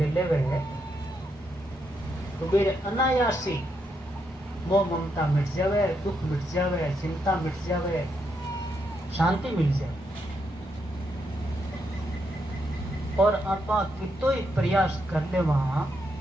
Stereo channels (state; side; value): normal; both; correlation 0.80